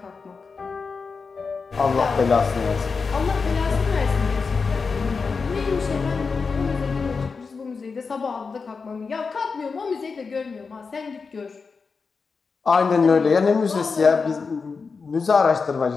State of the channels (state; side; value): quieter; right; 4.9 dB